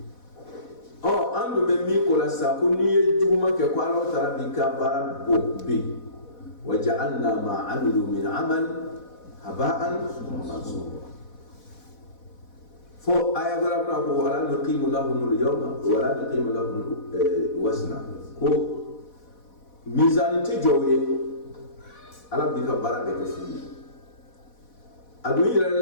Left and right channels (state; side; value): late; right; 4.1 ms